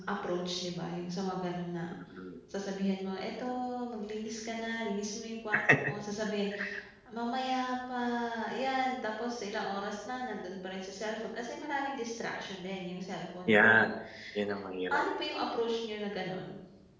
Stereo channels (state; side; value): identical; both; correlation 1.00